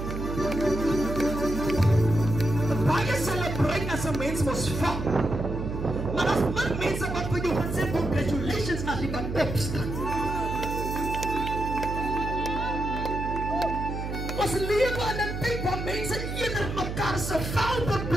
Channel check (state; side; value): noise; right; hum, 5 dB below the sound